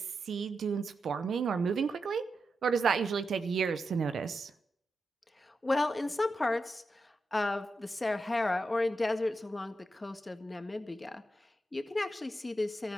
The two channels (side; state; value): both; normal; correlation 0.88